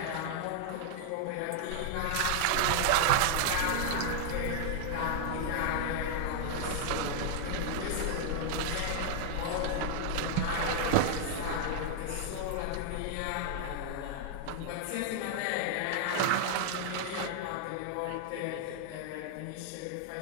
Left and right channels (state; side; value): different; both; correlation 0.00